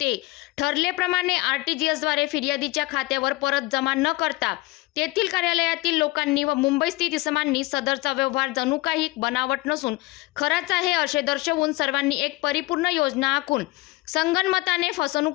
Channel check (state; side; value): quieter; right; 21.4 dB